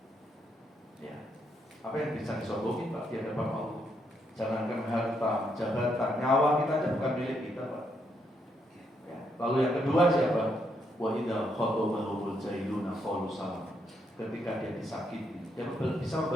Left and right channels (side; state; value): both; normal; correlation 0.77